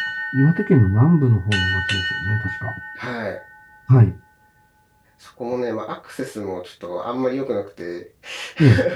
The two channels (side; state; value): both; identical; correlation 1.00